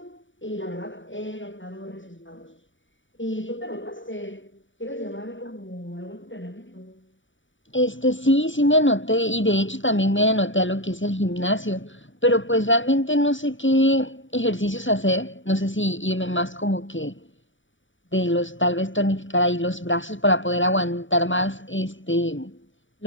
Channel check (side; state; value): right; late; 0.56 ms